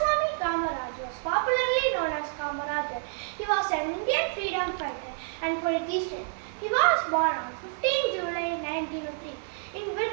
Kamaraj was popularly known as Kamarajar. He was an Indian freedom fighter and politician. He was born on 15 July 1903 in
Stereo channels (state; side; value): silent; left; digital silence